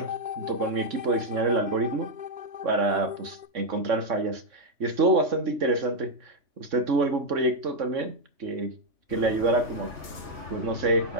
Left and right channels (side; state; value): left; late; 2.8 ms